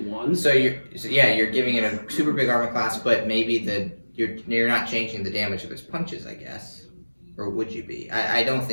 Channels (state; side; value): inverted; both; correlation -1.00